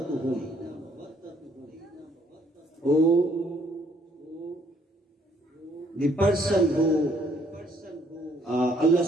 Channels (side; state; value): both; normal; correlation 0.66